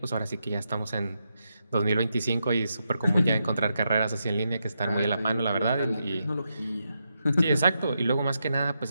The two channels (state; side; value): inverted; both; correlation -0.84